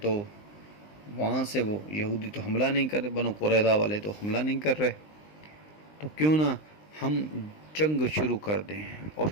وہاں سے وہ یہودی تو حملہ نہیں کر رہے، بنو قریظہ والے تو حملہ نہیں کر رہے، تو کیوں نہ ہم جنگ شروع کر دیں اور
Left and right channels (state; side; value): late; right; 19 ms